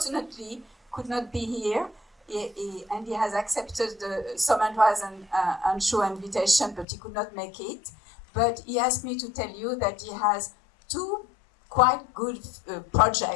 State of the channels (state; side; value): drops out; right; at 6.9 s